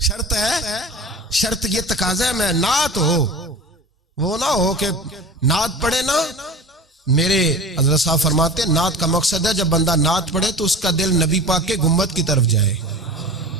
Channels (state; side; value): normal; both; correlation 0.37